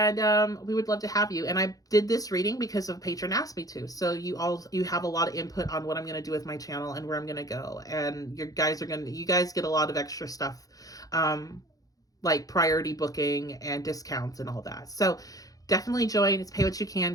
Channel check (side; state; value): right; late; 0.17 ms